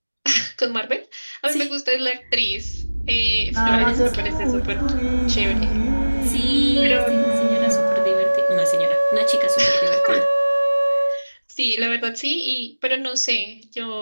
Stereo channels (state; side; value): inverted; both; correlation -1.00